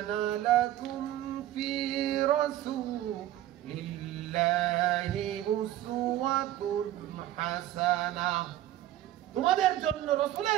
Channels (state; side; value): quieter; left; 13.5 dB